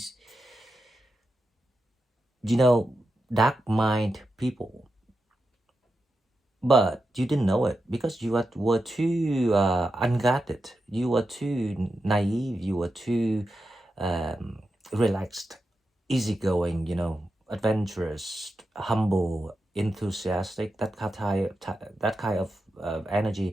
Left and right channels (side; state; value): both; normal; correlation 0.89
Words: dark mind people. But you didn't know it because you were too unguarded. You were too naive. You were too relaxed, easygoing, adventurous, humble, enthusiastic, that kind of